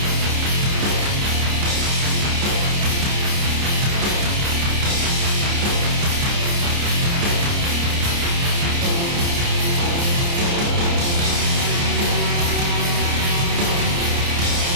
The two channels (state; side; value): late; left; 29 ms